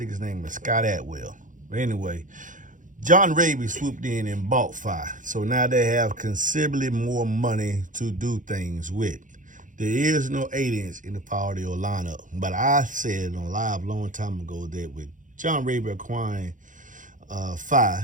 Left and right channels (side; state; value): left; late; 0.37 ms